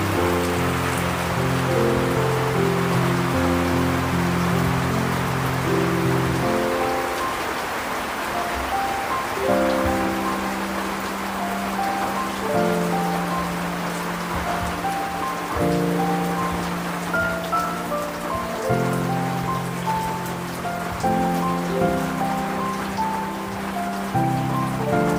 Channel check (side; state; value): both; identical; correlation 1.00